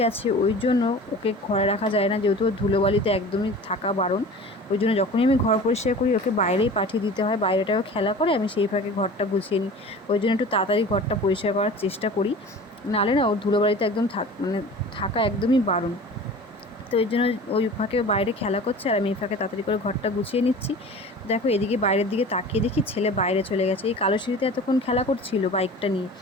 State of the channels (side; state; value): both; normal; correlation 0.39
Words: আছে ওই জন্য ওকে ঘরে রাখা যায় না, যেহেতু ওর ধুলোবালিতে একদমই থাকা বারণ। ওই জন্য যখনই আমি ঘর পরিষ্কার করি ওকে বাইরেই পাঠিয়ে দিতে হয়, বাইরেটাও খেলা করে, আমি সেই ফাঁকে ঘরটা গুছিয়ে নিই। ওই জন্য একটু তাড়াতাড়ি ঘরটা পরিষ্কার করার চেষ্টা করি, নাহলে না ওর ধুলোবালিতে একদম থাকা একদমই বারণ। তো ওই জন্য ওই ফাঁকে বাইরে খেলা করছে আর আমি এই ফাঁকে তাড়াতাড়ি করে ঘরটা গুছিয়ে নিচ্ছি। দেখো এদিকে বাইরের দিকে তাকিয়ে দেখি ছেলে বাইরে চলে গেছে, এই কালো সিঁড়িতে এতক্ষণ খেলা করছিল বাইকটা নিয়ে।